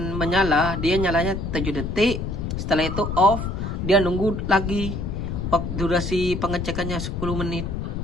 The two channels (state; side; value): noise; left; rumble, 4 dB below the sound